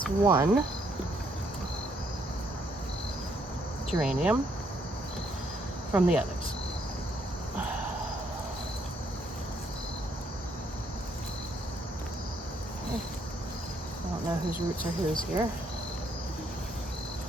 one geranium from the others. I don't know whose roots are whose here.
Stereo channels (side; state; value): both; normal; correlation 0.71